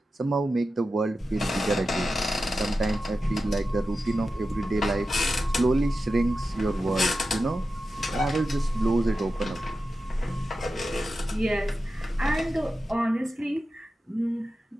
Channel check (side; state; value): both; normal; correlation 0.92